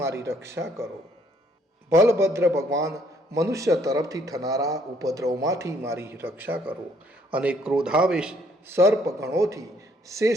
મારી રક્ષા કરો. બલભદ્ર ભગવાન મનુષ્ય તરફથી થનારા ઉપદ્રવમાંથી મારી રક્ષા કરો. અને ક્રોધાવેશ સર્પ ગણોથી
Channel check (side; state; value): both; normal; correlation 0.66